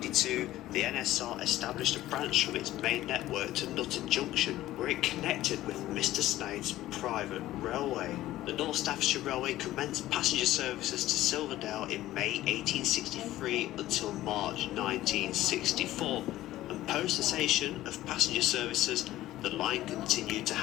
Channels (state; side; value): quieter; right; 15.1 dB